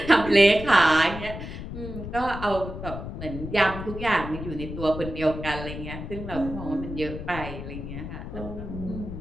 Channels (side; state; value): left; noise; rumble, 8 dB below the sound